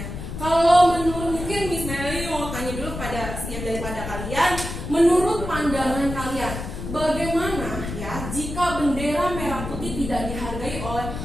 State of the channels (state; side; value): noise; left; rumble, 7 dB below the sound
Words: Kalau menurut, mungkin Miss Meli mau tanya dulu pada setiap daripada kalian, menurut pandangan kalian, bagaimana ya jika bendera merah putih tidak dihargai oleh